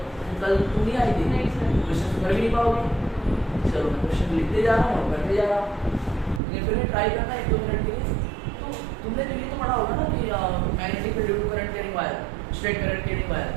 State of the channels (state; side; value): drops out; left; at 6.4 s